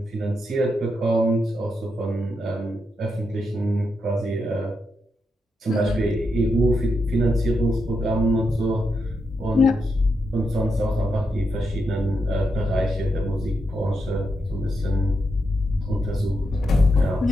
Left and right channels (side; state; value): both; normal; correlation 0.84